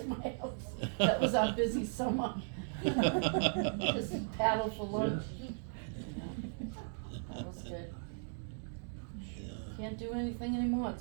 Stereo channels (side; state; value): left; silent; digital silence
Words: my house. That was our busy summer. Just paddle for lunch. That was good. Can't do anything anymore, it's